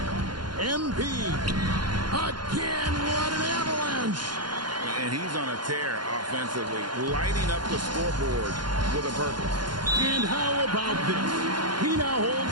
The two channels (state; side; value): late; left; 0.71 ms